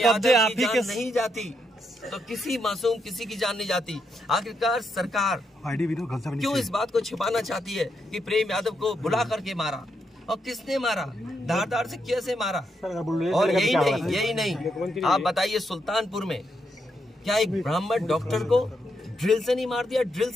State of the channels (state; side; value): normal; both; correlation 0.80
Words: कब्जे आप ही के नहीं जाती तो किसी मासूम किसी की जान नहीं जाती। आखिरकार सरकार क्यों इस बात को छिपाना चाहती है कि प्रेम यादव को बुला करके मारा, और किसने मारा, धारदार से कैसे मारा? और यही नहीं, आप बताइए सुल्तानपुर में क्या एक ब्राह्मण डॉक्टर को ड्रिल से नहीं मार दिया? ड्रिल